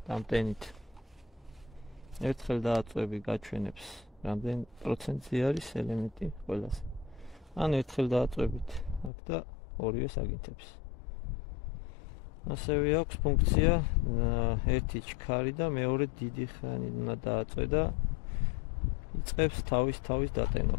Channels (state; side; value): drops out; right; at 9.1 s